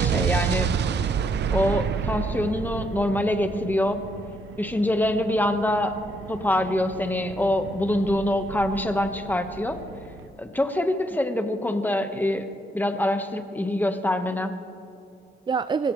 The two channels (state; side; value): normal; both; correlation 0.75